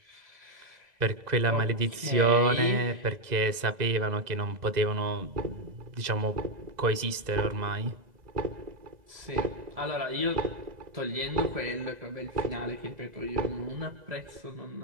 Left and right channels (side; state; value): left; late; 2.0 ms